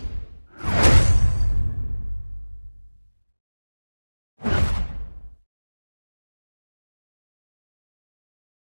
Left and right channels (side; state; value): both; inverted; correlation -1.00